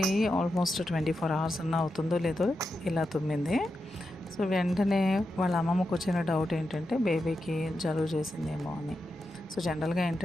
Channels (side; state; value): both; normal; correlation 0.88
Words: almost 24 hours అన్న అవుతుందో లేదో ఇలా తుమ్మింది. సో వెంటనే వాళ్ళ అమ్మమ్మకు వచ్చిన డౌట్ ఏంటంటే బేబీకి జలుబు చేసిందేమో అని. సో జనరల్గా